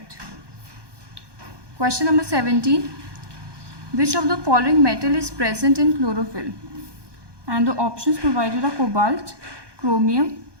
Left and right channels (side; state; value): left; late; 1.2 ms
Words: Question number 17. Which of the following metal is present in chlorophyll? And the options provided are cobalt, chromium,